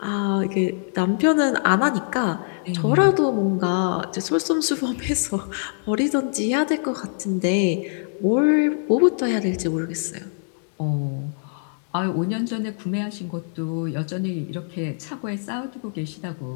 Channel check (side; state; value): right; silent; digital silence